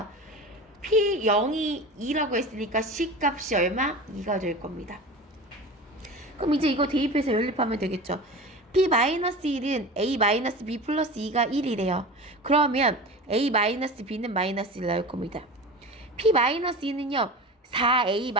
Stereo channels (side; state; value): both; normal; correlation 0.32